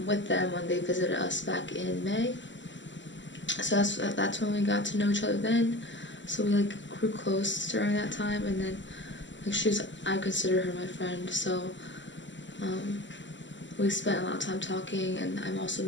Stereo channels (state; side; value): late; right; 0.54 ms